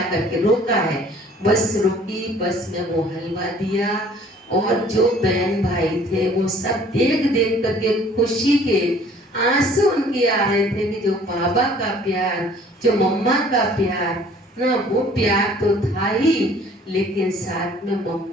करके रोका है। बस रुकी, बस में वो हलवा दिया। और जो बहन भाई थे वो सब देख देख करके खुशी के आंसू उनके आ रहे थे कि जो बाबा का प्यार, जो मम्मा का प्यार ना, वो प्यार तो था ही, लेकिन साथ में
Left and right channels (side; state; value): both; normal; correlation 0.54